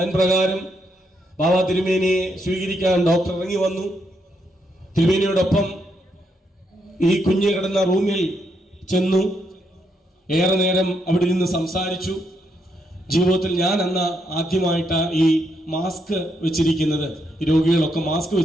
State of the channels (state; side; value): normal; both; correlation 0.78